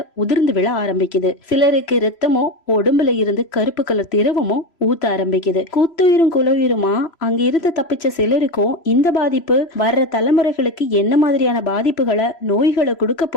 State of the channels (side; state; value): right; late; 3.0 ms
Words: உதிர்ந்து விழ ஆரம்பிக்குது. சிலருக்கு ரத்தமோ உடம்புல இருந்து கருப்பு கலர் திரவமோ ஊத்த ஆரம்பிக்குது. குத்துயிரும் குலவுயிருமா அங்க இருந்து தப்பிச்ச சிலருக்கும் இந்த பாதிப்பு வர்ற தலைமுறைகளுக்கு என்ன மாதிரியான பாதிப்புகளை நோய்களை கொடுக்க